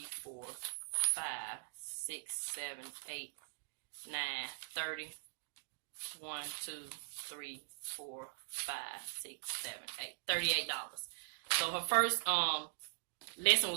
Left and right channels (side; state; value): left; silent; digital silence